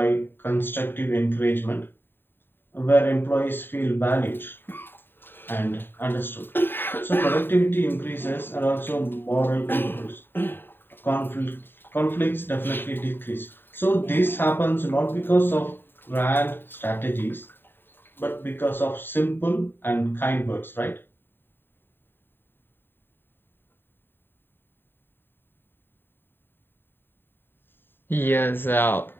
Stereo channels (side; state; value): right; late; 0.098 ms